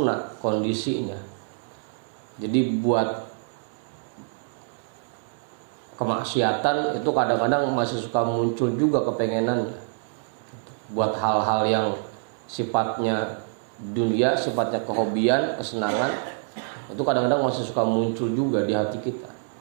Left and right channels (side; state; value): left; silent; 61 dB below the other